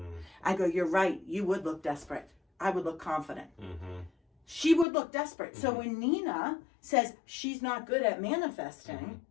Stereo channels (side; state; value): right; drops out; at 4.9 s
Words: I go, you're right. You would look desperate. I would look confident. She would look desperate. So when Nina says she's not good at manifesting,